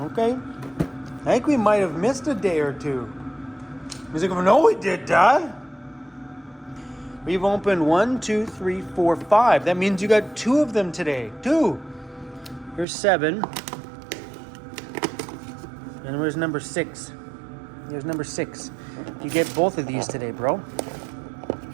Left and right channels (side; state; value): left; drops out; at 12.9 s